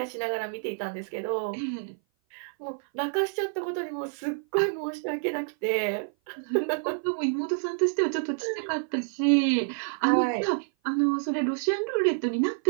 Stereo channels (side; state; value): left; silent; 56 dB below the other